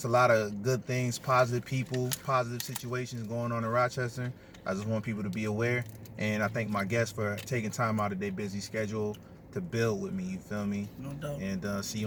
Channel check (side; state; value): both; identical; correlation 1.00